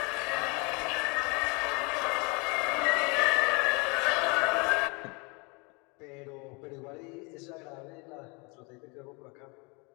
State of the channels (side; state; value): right; quieter; 30.0 dB